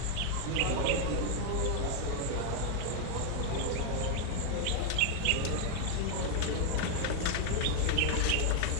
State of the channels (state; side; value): different; both; correlation 0.00